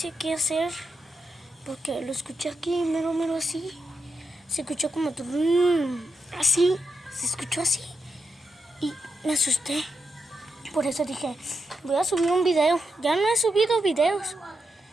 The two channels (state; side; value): normal; both; correlation 0.86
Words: qué hacer. Porque lo escuché aquí, mero así. Se escuchó como así. Se escuchó así. Y me asusté. Por eso dije, voy a subir un video. Ya no he subido videos.